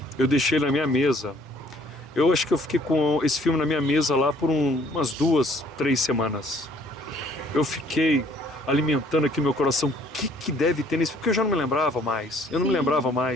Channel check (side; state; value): both; normal; correlation 0.60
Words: eu deixei na minha mesa. Eu acho que eu fiquei com esse filme na minha mesa lá por umas 2, 3 semanas. Eu fiquei alimentando aqui meu coração. O que deve ter nesse filme? Porque eu já não me lembrava mais. Eu não me lembrava